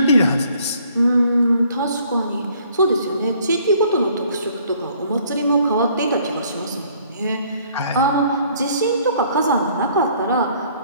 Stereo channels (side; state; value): both; inverted; correlation -0.61